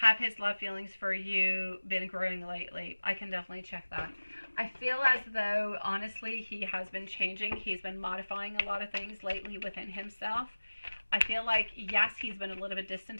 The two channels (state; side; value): inverted; both; correlation -1.00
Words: Have his love feelings for you been growing lately? I can definitely check that. I feel as though, honestly, he has been changing. He's been modifying a lot of things lately within himself. I feel like, yes, he's been a little bit